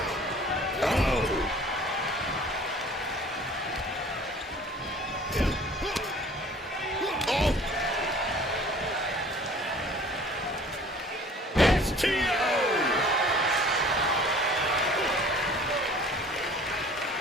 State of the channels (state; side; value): normal; both; correlation 0.49